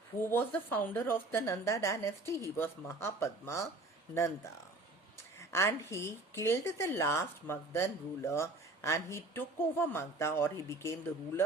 who was the founder of the Nanda dynasty? He was Mahapadma Nanda. And he killed the last Magadhan ruler and he took over Magadha, or he became the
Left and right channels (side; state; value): left; quieter; 3.0 dB